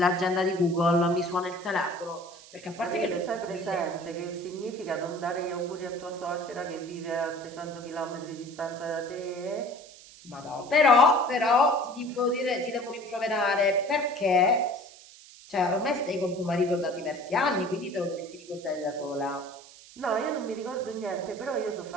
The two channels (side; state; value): right; noise; hiss, 20 dB below the sound